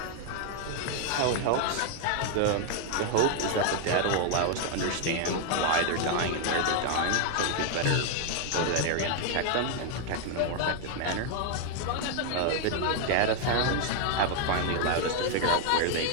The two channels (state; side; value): different; both; correlation 0.00